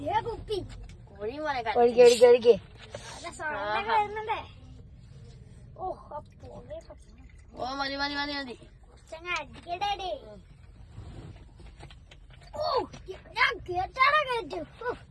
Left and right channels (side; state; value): both; identical; correlation 1.00